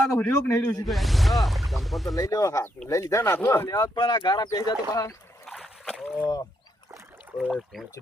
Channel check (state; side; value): normal; both; correlation 0.77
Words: તો રહ્યો કે નહીં રહ્યો સીધો. હા ચંપલ તો લઈ લેવો હાથ લઈ લીધા ના તો લેવા પણ આ ગારા પેઈ જા તો બહાર ઓય